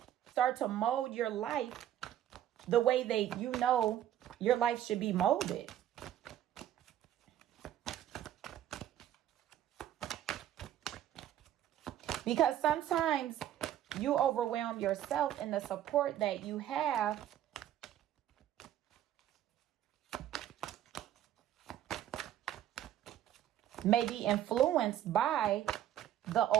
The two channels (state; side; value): quieter; left; 11.7 dB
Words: Start to mold your life the way that you know your life should be molded. Because sometimes you overwhelm yourself, and the support that you have may be influenced by the